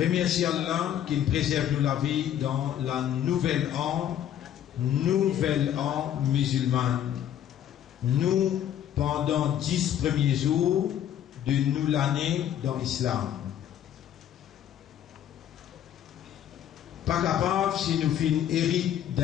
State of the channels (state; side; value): quieter; right; 10.5 dB